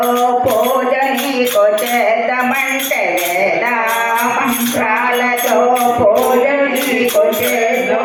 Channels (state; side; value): identical; both; correlation 1.00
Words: పూజ నీకు చేద్దామంటే వేద మంత్రాలతో పూజ నీకు